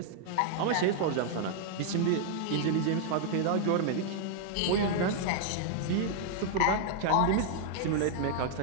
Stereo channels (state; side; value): different; both; correlation 0.00